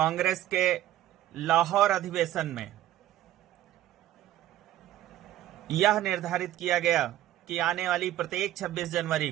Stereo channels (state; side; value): quieter; left; 13.5 dB